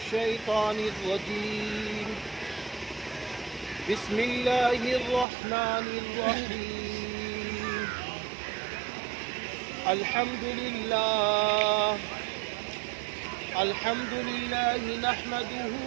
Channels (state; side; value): drops out; left; at 5.2 s